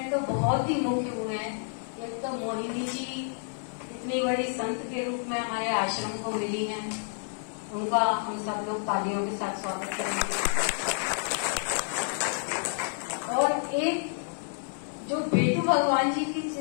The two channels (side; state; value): right; silent; 58 dB below the other